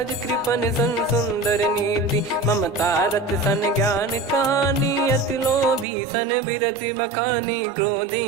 कृपन सन सुंदर नीति, ममता रत सन ज्ञान कहानी, अति लोभी सन बिरति बखानी, क्रोधी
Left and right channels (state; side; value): drops out; left; at 5.9 s